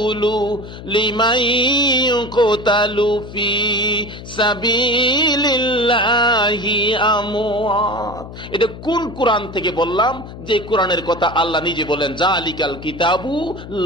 লিমান ইউকতালু ফি সাবিলিল্লাহি আমওয়াত। এটা কোন কোরআন থেকে বললাম? যে কোরআনের কথা আল্লাহ নিজে বলেন, জালিকাল কিতাবু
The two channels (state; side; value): noise; left; hum, 13 dB below the sound